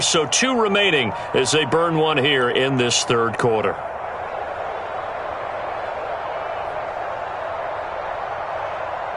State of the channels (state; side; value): identical; both; correlation 1.00